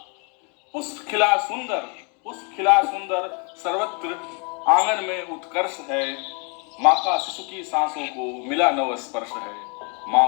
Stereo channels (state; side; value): quieter; right; 34.5 dB